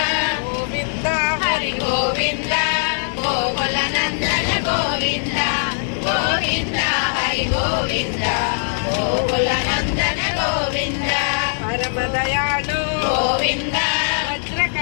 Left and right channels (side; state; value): right; silent; digital silence